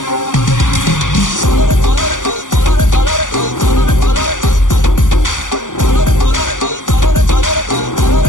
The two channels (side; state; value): right; late; 0.87 ms